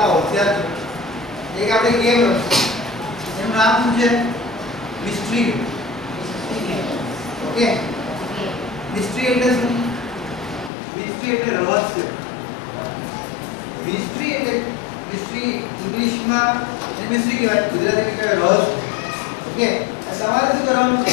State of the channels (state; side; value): drops out; right; at 10.7 s